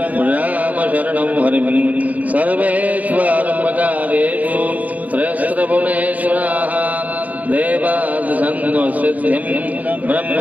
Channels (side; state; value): left; late; 0.074 ms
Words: रामशरणं हरिं सर्वेष्वारम्भकार्येषु त्रयस्त्रपुणेश्वराः देवादिसन्नसिद्धिं